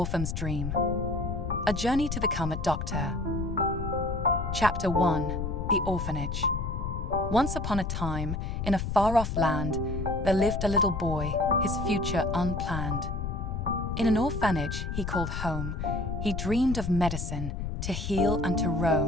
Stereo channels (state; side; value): noise; left; rumble, 3 dB below the sound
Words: Dream. A Journey to Become a Doctor. Chapter 1. The Orphanage. Once upon a time, in a far-off land, there lived a little boy, his future unplanned. In an orphanage he called home, he dreamed of medicine, to heal and to